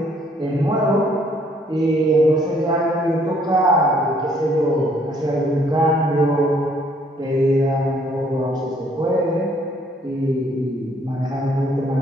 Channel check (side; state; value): both; normal; correlation 0.64